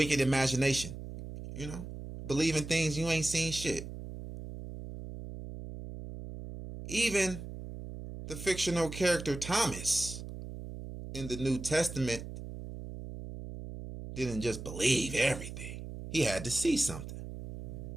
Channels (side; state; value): right; noise; hum, 10 dB below the sound